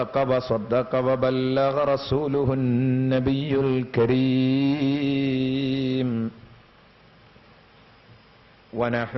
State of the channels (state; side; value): identical; both; correlation 1.00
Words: وبلغ رسوله النبي الكريم